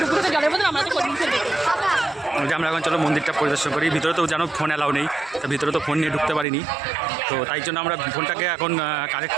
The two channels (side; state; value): left; drops out; at 6.5 s